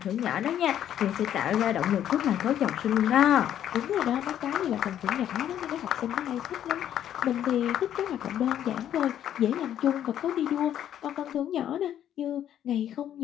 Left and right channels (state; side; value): quieter; right; 10.6 dB